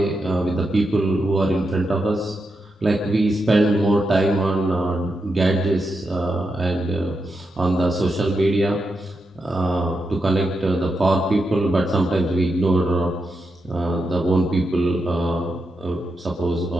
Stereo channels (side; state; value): both; normal; correlation 0.86